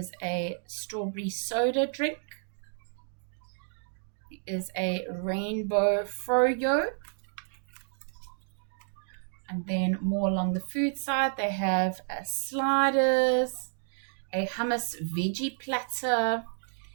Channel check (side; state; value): left; silent; digital silence